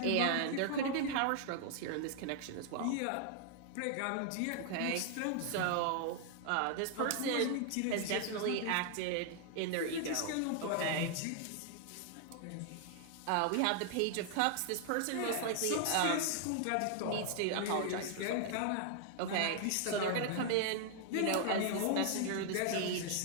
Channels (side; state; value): both; different; correlation 0.00